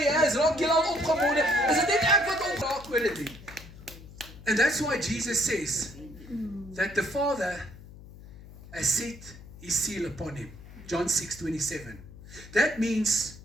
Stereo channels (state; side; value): noise; left; hum, 17 dB below the sound